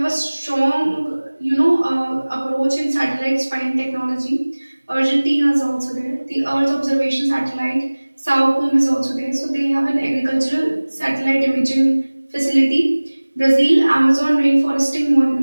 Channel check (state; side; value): inverted; both; correlation -1.00